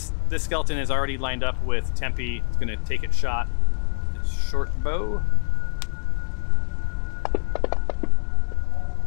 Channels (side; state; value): right; silent; digital silence